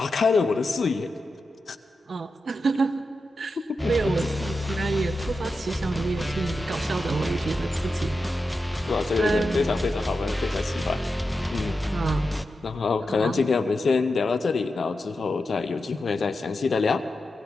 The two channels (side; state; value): both; normal; correlation 0.90